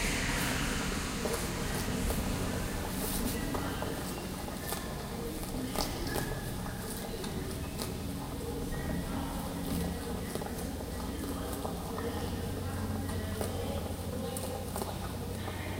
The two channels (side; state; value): both; identical; correlation 1.00